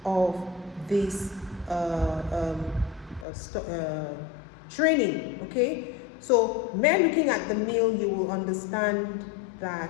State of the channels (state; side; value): drops out; right; at 3.2 s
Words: of this training, okay? So, mere looking at the meal, you will understand